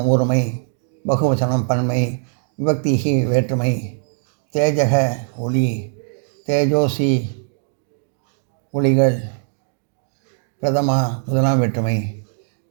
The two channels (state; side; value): silent; left; digital silence